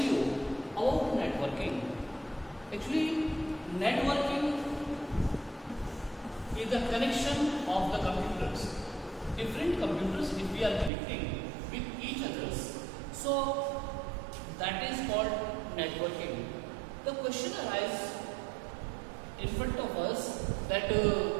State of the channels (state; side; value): drops out; left; at 10.9 s